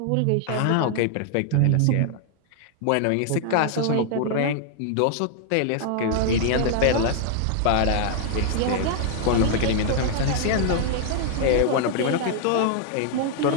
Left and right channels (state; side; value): different; both; correlation 0.00